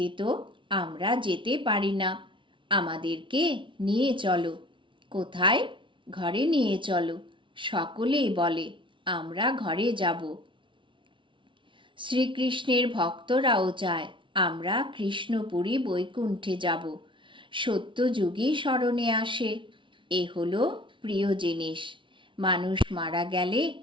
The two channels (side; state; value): left; late; 0.24 ms